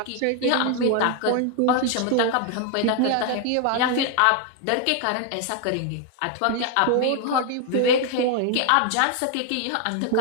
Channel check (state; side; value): different; both; correlation 0.00